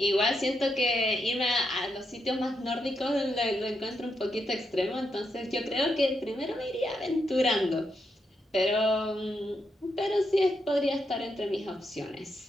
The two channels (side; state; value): both; normal; correlation 0.82